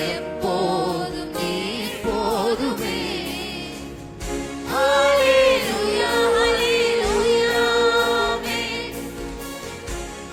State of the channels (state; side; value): identical; both; correlation 1.00